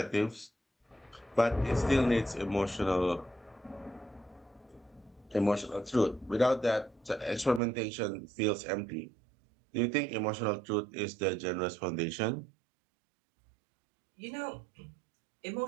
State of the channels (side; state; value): left; drops out; at 7.6 s